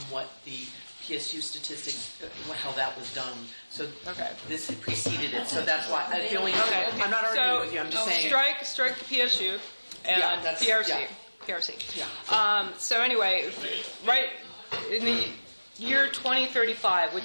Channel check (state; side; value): inverted; both; correlation -1.00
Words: what the PSU statistics, how that was done. So Okay. this had preceded it. So that's why. Okay. I'm not arguing So, with you. I'm just saying. Strike the PSU and Yeah, that's- PRC. yeah. PRC. Yeah. So anyway, right in the year 2035,